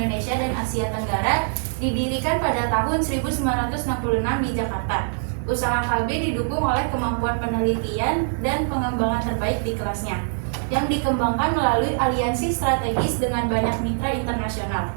dan Asia Tenggara, didirikan pada tahun 1966 di Jakarta. Usaha Kalbe didukung oleh kemampuan penelitian dan pengembangan terbaik di kelasnya, yang dikembangkan melalui aliansi strategis dengan banyak mitra internasional.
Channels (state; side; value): silent; left; 63 dB below the other